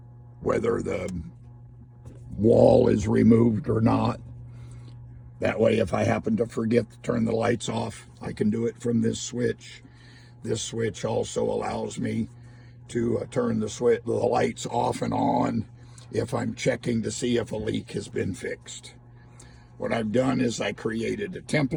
whether the wall is removed or not. That way, if I happen to forget to turn the lights off, I can do it from this switch. This switch also allows me to turn the lights off and on if I'm checking to see if a leak has been fixed. What I've done is I created a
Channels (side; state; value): both; identical; correlation 1.00